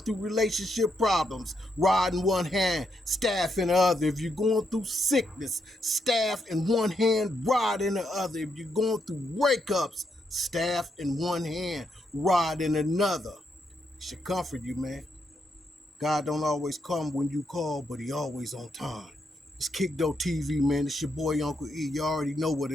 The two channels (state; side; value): normal; both; correlation 0.80